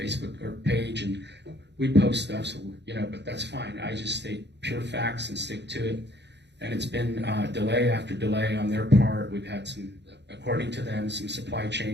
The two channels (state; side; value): late; left; 0.50 ms